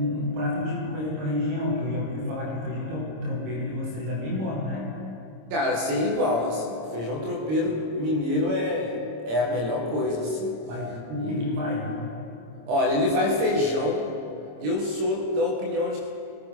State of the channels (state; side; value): late; left; 26 ms